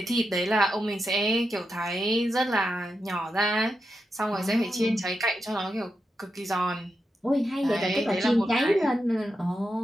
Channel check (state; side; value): normal; both; correlation 0.87